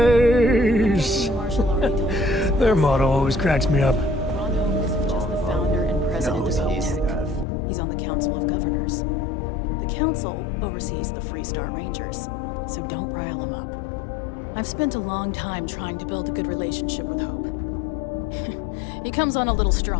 Their motto always cracks me up. Ron Hope isn't just the founder and president of Hope. He's on the Council of Governors. The Council oversees the Freestar Rangers, so don't rile him up. I've spent a long time trying to build a good relationship with Hope. He comes on a little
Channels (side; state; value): right; drops out; at 7.5 s